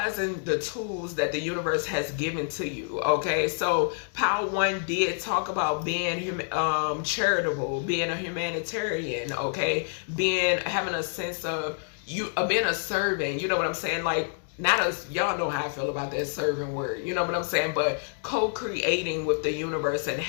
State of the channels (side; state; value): right; silent; digital silence